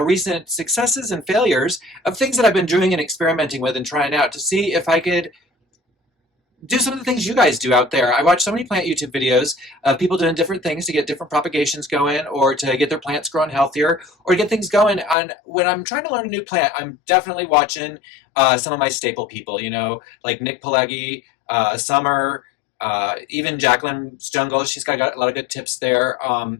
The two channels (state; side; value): drops out; right; at 15.2 s